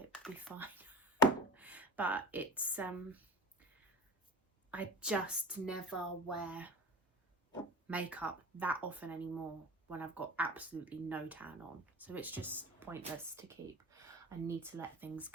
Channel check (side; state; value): both; normal; correlation 0.31